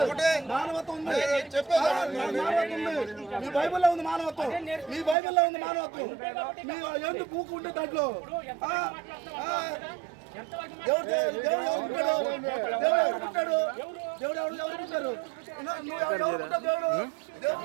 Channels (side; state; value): left; drops out; at 5.2 s